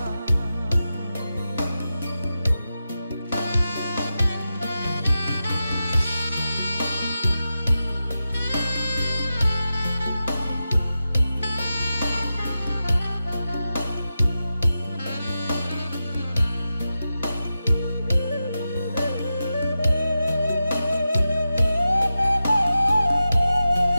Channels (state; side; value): inverted; both; correlation -0.92